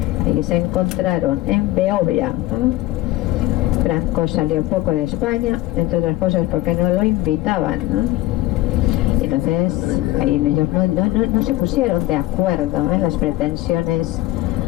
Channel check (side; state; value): right; quieter; 16.9 dB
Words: Ahí se encontraron en Beovia. Franco salió poco de España, entre otras cosas porque no lo invitaban, Entonces ahí ellos no se pusieron de acuerdo en las pretensiones,